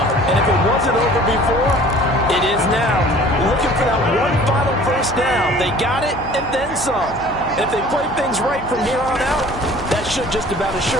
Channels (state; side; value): noise; left; hum, 13 dB below the sound